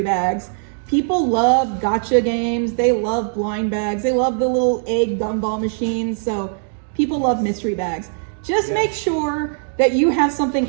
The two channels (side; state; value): left; silent; digital silence